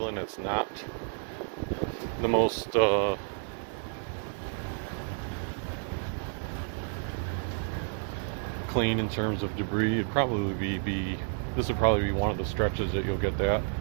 it's not the most clean in terms of debris. It'd probably be this would probably be one of the stretches that you'll get that.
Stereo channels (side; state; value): left; silent; 57 dB below the other